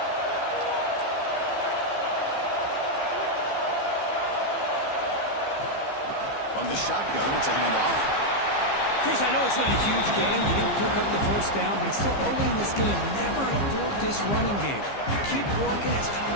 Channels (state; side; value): late; right; 15 ms